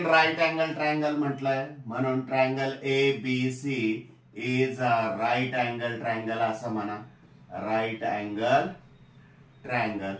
right angle triangle म्हटलंय म्हणून triangle ABC is a right angle triangle असं म्हणा. Right angle triangle.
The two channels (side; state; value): both; identical; correlation 1.00